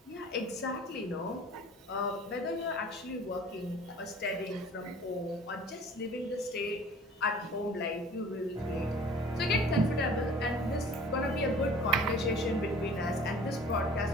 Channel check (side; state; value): both; normal; correlation 0.47